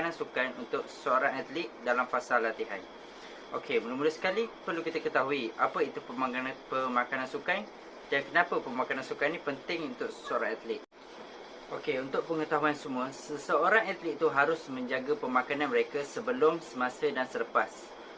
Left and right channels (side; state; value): both; identical; correlation 1.00